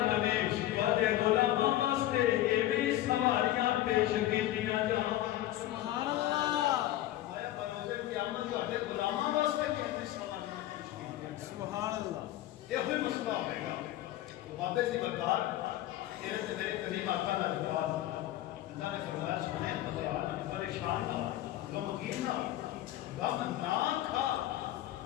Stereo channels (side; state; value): right; quieter; 14.3 dB